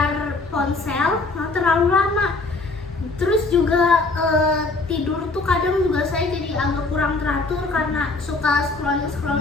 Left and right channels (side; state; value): right; quieter; 3.5 dB